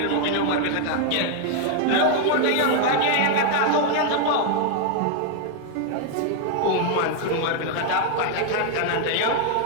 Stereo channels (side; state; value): both; different; correlation 0.00